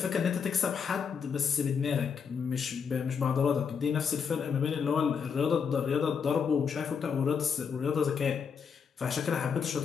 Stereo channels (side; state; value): right; quieter; 6.5 dB